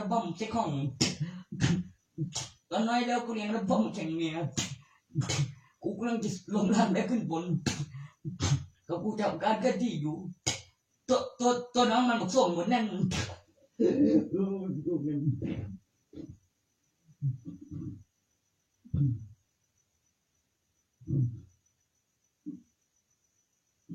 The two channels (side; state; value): both; identical; correlation 1.00